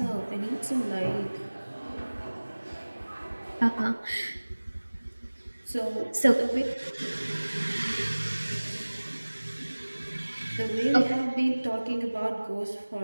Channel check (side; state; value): both; inverted; correlation -1.00